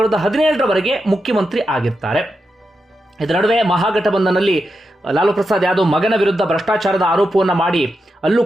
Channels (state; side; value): normal; both; correlation 0.87